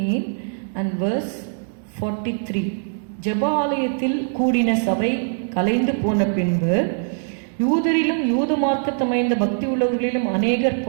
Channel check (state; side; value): silent; left; digital silence